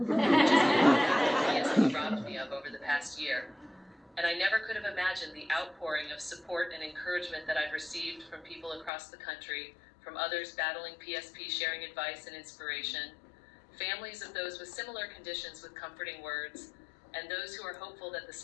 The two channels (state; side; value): drops out; right; at 8.9 s